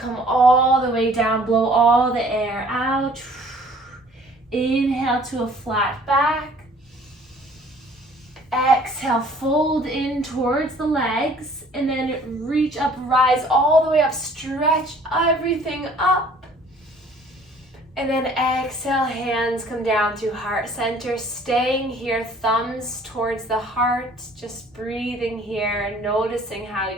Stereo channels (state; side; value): normal; both; correlation 0.55